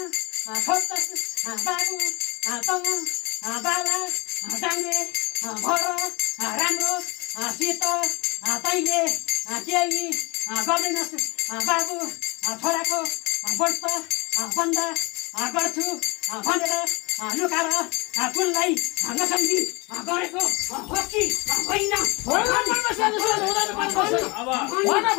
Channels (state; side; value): quieter; right; 26.8 dB